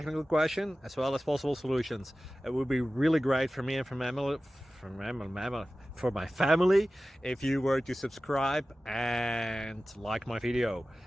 question as well as possible solutions. It would be really great for me and for my family if you were to subscribe and like my video,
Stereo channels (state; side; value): normal; both; correlation 0.96